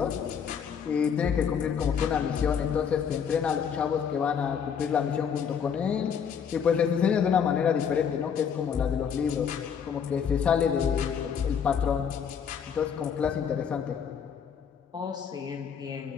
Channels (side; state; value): right; quieter; 7.3 dB